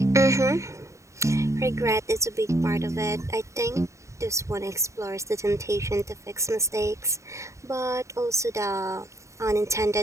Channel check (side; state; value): left; late; 0.14 ms